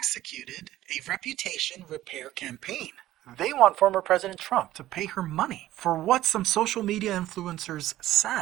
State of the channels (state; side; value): quieter; left; 14.6 dB